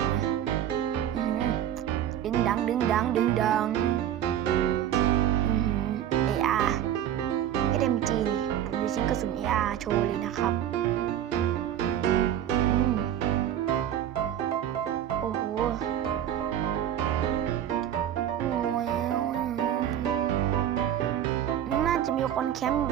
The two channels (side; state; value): left; quieter; 10.7 dB